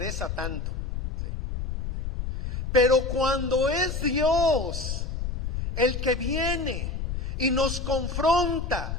tanto. ¿Sí? Pero cuando es Dios el que viene y nos confronta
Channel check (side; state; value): left; noise; rumble, 4 dB below the sound